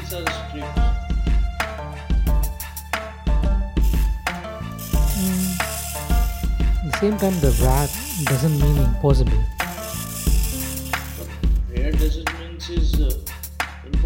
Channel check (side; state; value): both; identical; correlation 1.00